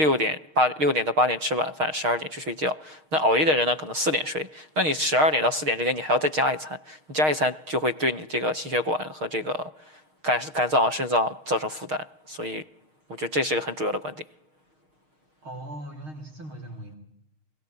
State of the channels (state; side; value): late; left; 6.5 ms